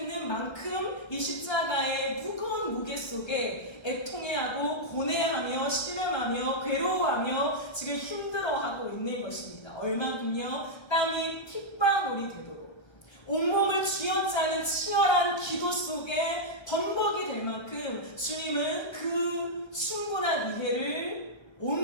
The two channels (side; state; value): right; late; 1.3 ms